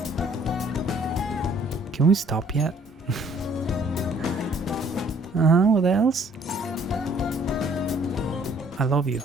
Can we stop yet? What else? I love you.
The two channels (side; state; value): both; normal; correlation 0.60